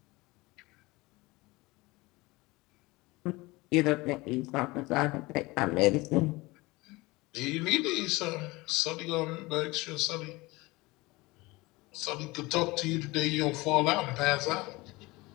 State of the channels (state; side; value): quieter; right; 22.2 dB